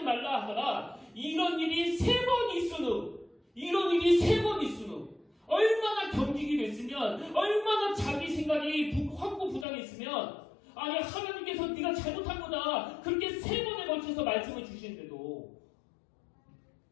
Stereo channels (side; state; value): right; drops out; at 9.7 s